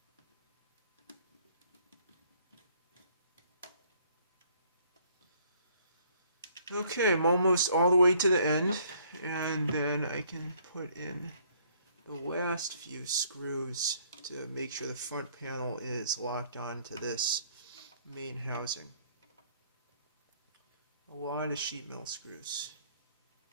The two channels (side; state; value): both; inverted; correlation -0.62